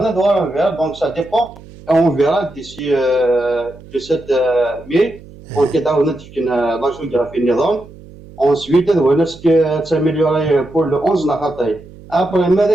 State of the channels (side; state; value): right; noise; hum, 20 dB below the sound